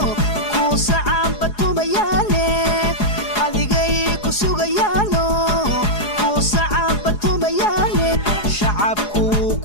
ku sacaan batumayaane adigay ku sugayaano ku sacaan batumayaane shacabku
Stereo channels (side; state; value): right; late; 4.8 ms